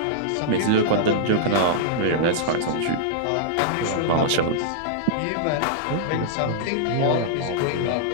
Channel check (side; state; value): both; different; correlation -0.02